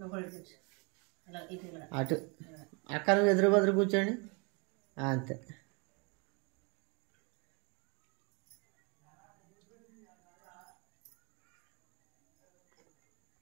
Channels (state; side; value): quieter; left; 32.7 dB